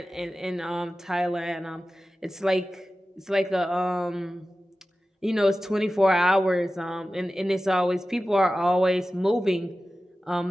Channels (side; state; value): both; normal; correlation 0.95